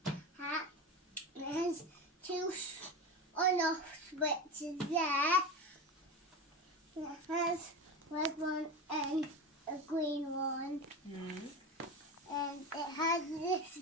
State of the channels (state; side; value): normal; both; correlation 0.24